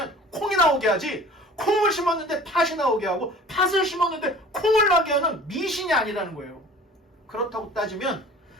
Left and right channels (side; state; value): both; normal; correlation 0.45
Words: 콩이 나오게 하지, 콩을 심었는데 팥이 나오게 하고 팥을 심었는데 콩을 나게 하는 미신이 아니라는 거예요. 그렇다고 따지면